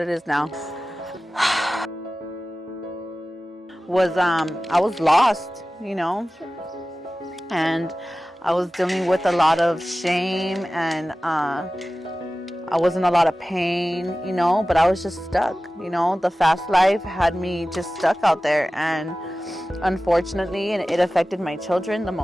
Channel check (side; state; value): both; normal; correlation 0.96